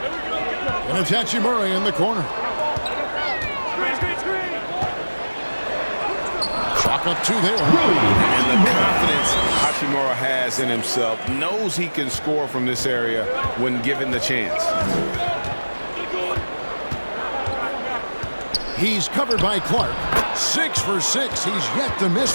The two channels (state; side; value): inverted; both; correlation -1.00